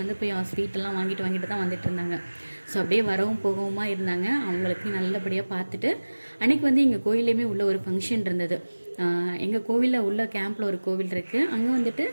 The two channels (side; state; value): both; inverted; correlation -1.00